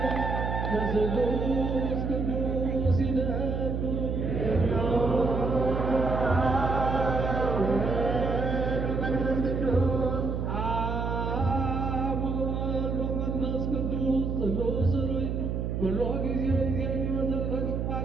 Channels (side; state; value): right; noise; hum, 1 dB below the sound